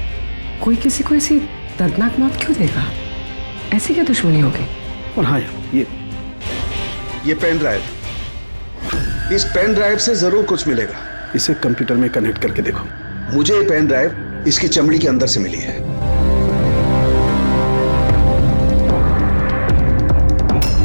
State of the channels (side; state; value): both; inverted; correlation -1.00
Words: कोई किसी को ऐसी दर्दनाक मौत क्यों देगा? ऐसी क्या दुश्मनी होगी? और हाँ यार, ये पेन ड्राइव, इस पेन ड्राइव से जरूर कुछ मिलेगा। इसे कंप्यूटर में कनेक्ट करके देखो। मुझे ये पेन ड्राइव इसकी चमड़ी के अंदर से मिली है।